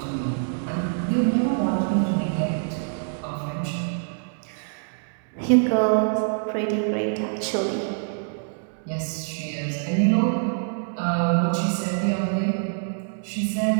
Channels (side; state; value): left; silent; digital silence